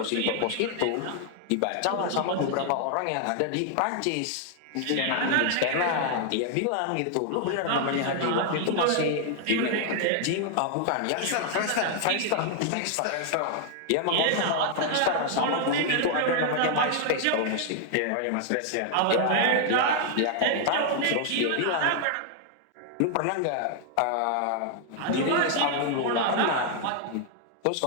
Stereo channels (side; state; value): both; different; correlation 0.00